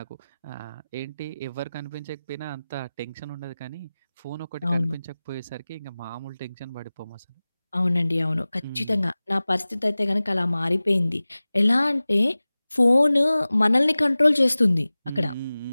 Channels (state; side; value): inverted; both; correlation -0.98